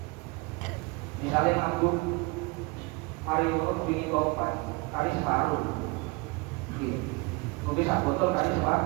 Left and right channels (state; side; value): quieter; left; 27.2 dB